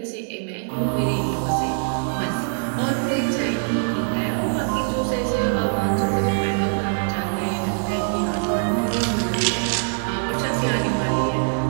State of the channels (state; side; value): silent; left; digital silence